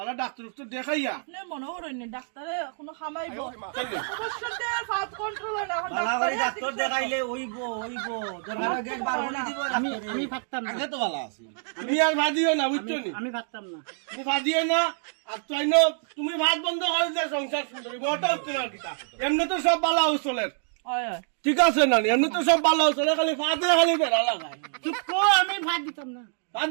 ডাক্তার উত্তর দেখাইয়া আপনার মনে করেন ডাক্তারে কোনো খামাইব অবশ্যই ফাট কন্ট্রোল হয় না এখন বালা করে ডাক্তারে ডাক্তার দেখাইলে ওইবো দরকার গেট বার করে দিব আমি ভাবতাম না আগে তো ভালো আছে তুমি আর ভাদিও না বুঝছো নি আমি ভাবতাম না তুমি ভাদিও না আর তাই না তুমি ভাত বন্ধ করে দিয়ে সংসার সুন্দর ঘরটা উঠতে না কিতা এমনি তো সব বালা উচলের হয় ঠিক আছে না এমনি তো সব বালা উচলে খালি ফাতে খালি বেড়া লাগায় চুপ কর, আমি ভাত দিতাম না ভাত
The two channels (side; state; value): left; silent; digital silence